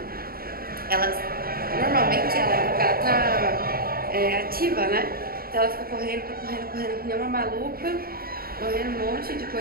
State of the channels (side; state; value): left; late; 0.43 ms